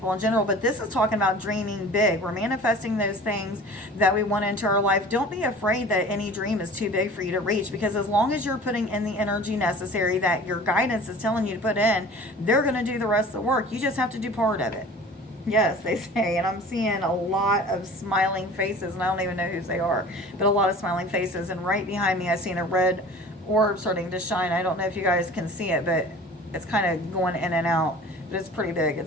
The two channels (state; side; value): normal; both; correlation 0.43